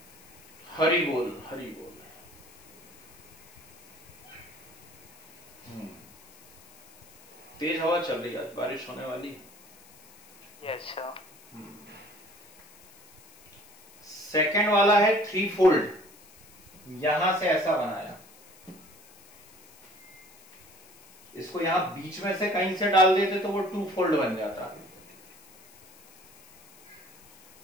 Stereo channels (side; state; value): left; noise; hiss, 25 dB below the sound